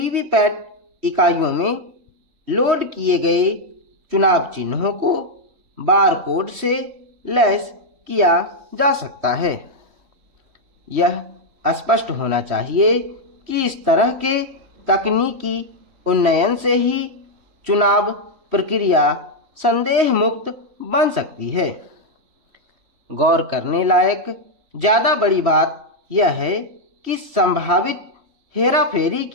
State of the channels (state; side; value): late; left; 3.1 ms